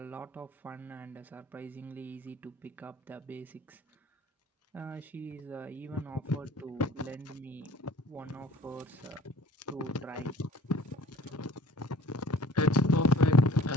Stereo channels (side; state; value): both; normal; correlation 0.50